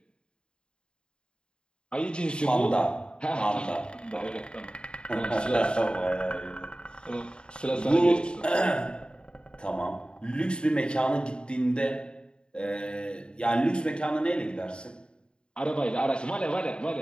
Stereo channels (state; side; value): late; right; 0.052 ms